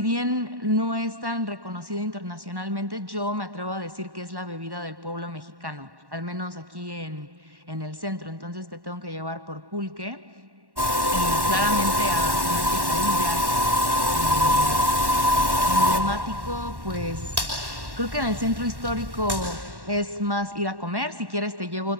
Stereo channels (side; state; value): left; late; 1.1 ms